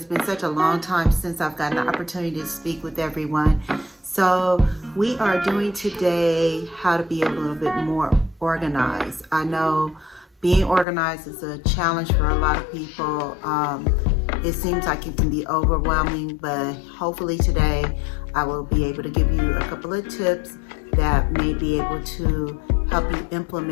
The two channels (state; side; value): drops out; right; at 10.9 s